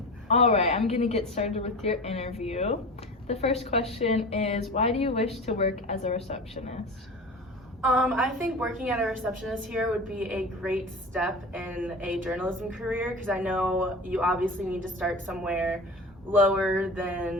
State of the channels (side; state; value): both; normal; correlation 0.32